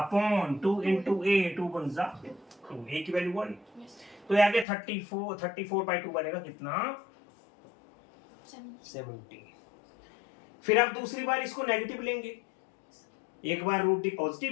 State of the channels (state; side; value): drops out; right; at 4.7 s